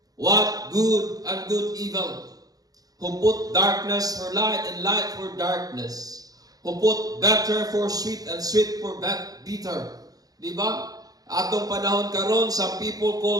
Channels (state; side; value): late; left; 0.18 ms